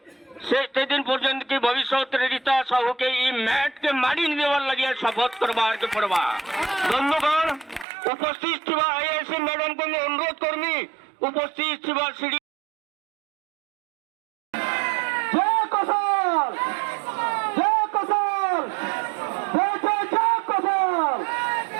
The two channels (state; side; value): drops out; left; at 7.9 s